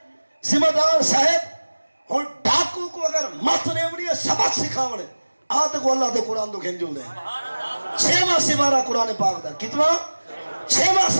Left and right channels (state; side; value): inverted; both; correlation -1.00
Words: ذمہ دار صاحب اور ڈاکو کو اگر مت نیوڑی ہے سبق سکھاوڑے آتے کو اللہ دے قرآن دو کھنجو دے 6واں سبارہ قرآن پاک دا کتنا 6واں